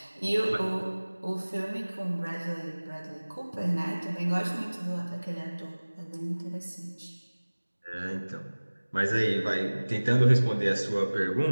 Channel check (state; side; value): inverted; both; correlation -1.00